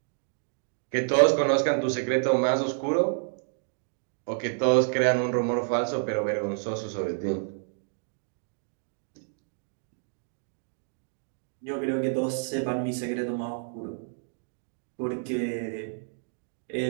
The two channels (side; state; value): left; silent; digital silence